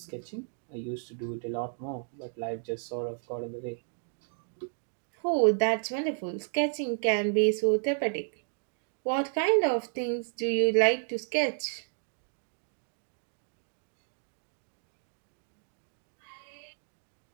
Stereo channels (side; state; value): left; silent; 56 dB below the other